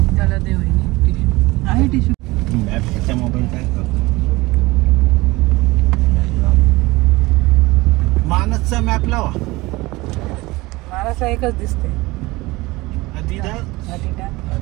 मानसचा मॅप लावा. मानसला एकच दिसते,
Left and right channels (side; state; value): left; quieter; 21.2 dB